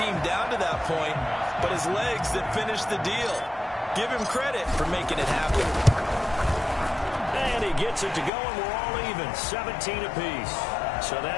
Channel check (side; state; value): right; drops out; at 8.3 s